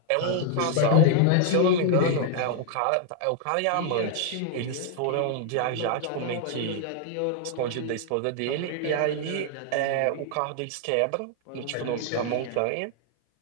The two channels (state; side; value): different; both; correlation 0.00